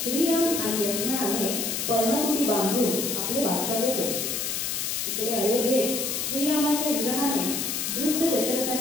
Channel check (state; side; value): noise; left; hiss, 1 dB below the sound